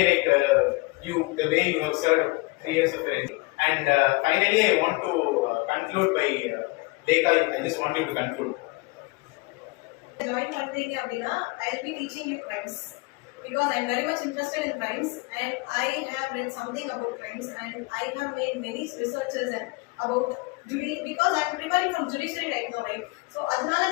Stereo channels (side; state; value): right; quieter; 25.1 dB